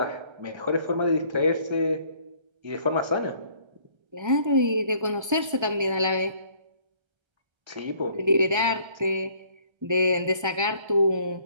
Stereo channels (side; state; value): left; late; 1.3 ms